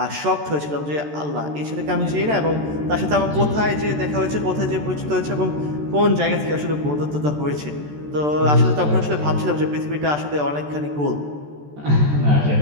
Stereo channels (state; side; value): late; left; 14 ms